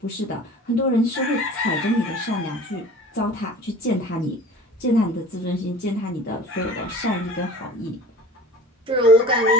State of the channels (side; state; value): both; normal; correlation 0.42